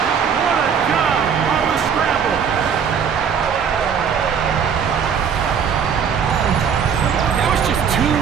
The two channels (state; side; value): quieter; left; 7.1 dB